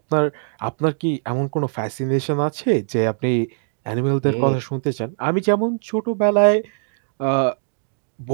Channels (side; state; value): left; silent; digital silence